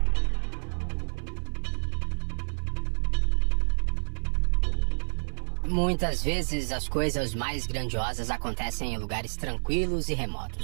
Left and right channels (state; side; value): silent; left; 55 dB below the other